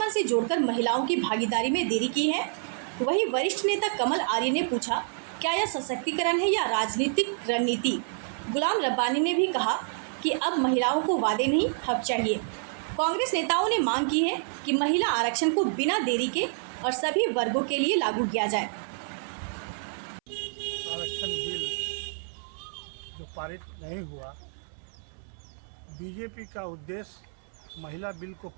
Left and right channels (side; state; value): left; silent; 59 dB below the other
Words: से जोड़कर महिलाओं की भागीदारी में देरी की है। वहीं वरिष्ठ नेता कमल आर्य ने पूछा, क्या यह सशक्तिकरण है या राजनीतिक रणनीति? गुलाम रब्बानी ने भी कहा कि अब महिलाओं को वादे नहीं, हक चाहिए। कांग्रेस नेताओं ने मांग की है कि महिला आरक्षण को बिना देरी के और सभी वर्गों के लिए लागू किया जाए। आरक्षण बिल जो पारित नहीं हुआ, बीजेपी का उद्देश्य महिला बिल को